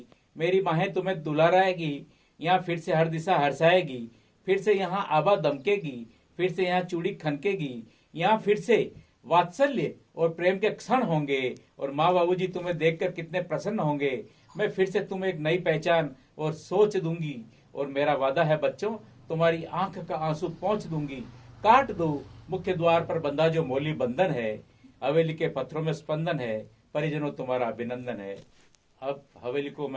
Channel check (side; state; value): both; identical; correlation 1.00